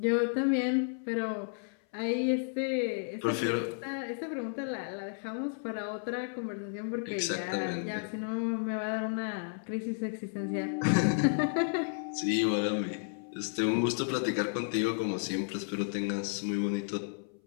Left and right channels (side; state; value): right; silent; 56 dB below the other